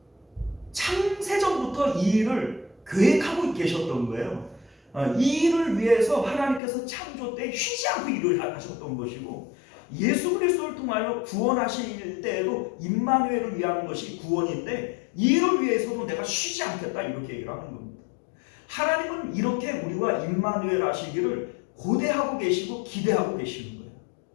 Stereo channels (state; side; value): drops out; right; at 6.6 s